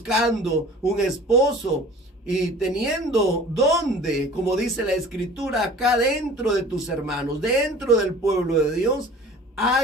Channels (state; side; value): normal; both; correlation 0.45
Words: un esposo y teniendo donde, como dice la escritura, acá dentro de tus hermanos, dentro del pueblo de Dios,